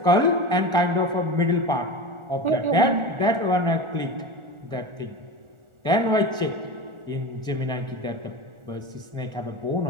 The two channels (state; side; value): late; left; 1.4 ms